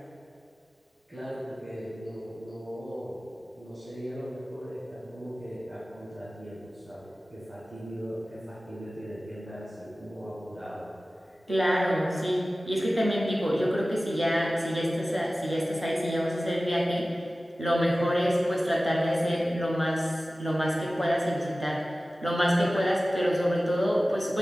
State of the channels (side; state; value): both; normal; correlation 0.96